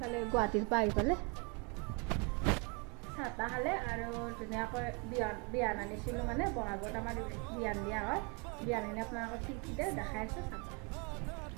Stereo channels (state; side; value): quieter; left; 32.9 dB